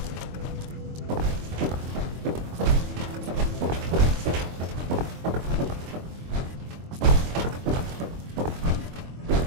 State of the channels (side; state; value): left; late; 23 ms